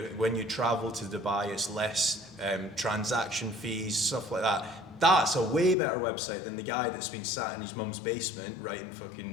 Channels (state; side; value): drops out; right; at 5.8 s